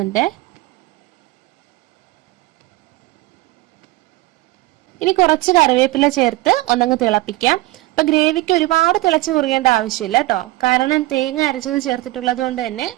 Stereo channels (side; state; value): left; quieter; 19.4 dB